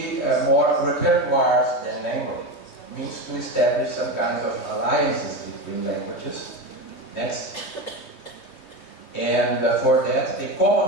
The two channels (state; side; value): late; right; 3.1 ms